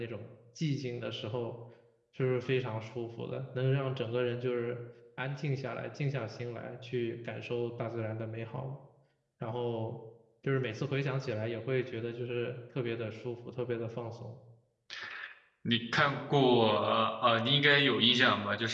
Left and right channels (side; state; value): both; identical; correlation 1.00